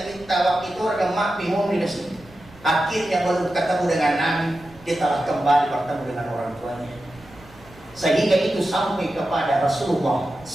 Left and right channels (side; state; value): right; noise; rumble, 23 dB below the sound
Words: waktu itu orang mak bingung di sini. Akhirnya baru ketemu dengan Nabi, dia telah kembali bertemu dengan orang tuanya. Sehingga itu sampai kepada Rasulullah